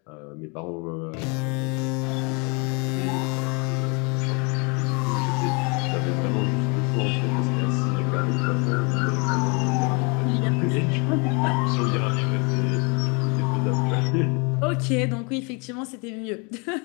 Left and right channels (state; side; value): quieter; right; 32.0 dB